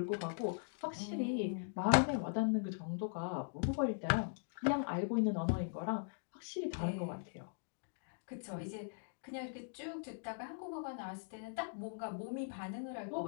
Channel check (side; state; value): right; silent; digital silence